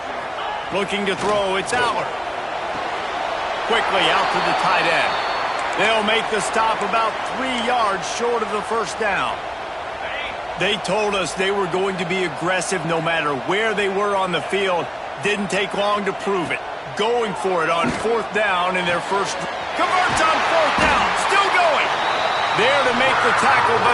Looking to throw, it's Aller. Quickly out to the tight end. They'll make the stop about 3 yards short of the first down. They told us they were going to be aggressive no matter where they were on the field. Didn't take long to prove it. Going for it on 4th down in their first. Converts on 4th down. Still going. There to make the tackle,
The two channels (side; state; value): both; identical; correlation 1.00